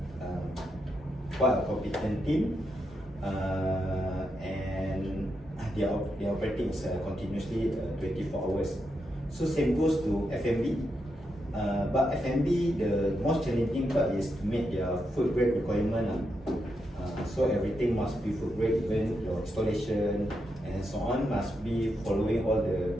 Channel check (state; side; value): normal; both; correlation 0.83